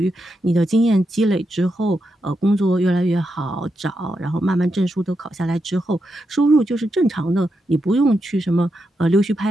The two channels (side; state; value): both; normal; correlation 0.85